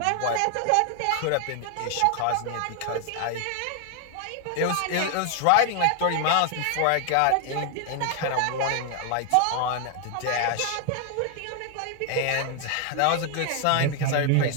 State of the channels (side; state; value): both; different; correlation 0.00